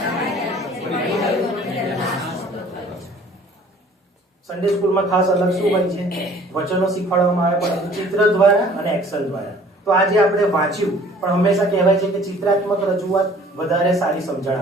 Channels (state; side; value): normal; both; correlation 0.53